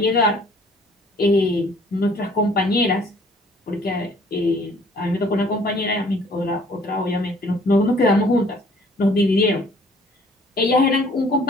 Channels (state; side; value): normal; both; correlation 0.56